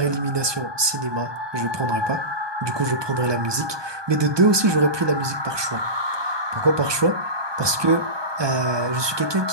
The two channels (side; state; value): left; late; 1.2 ms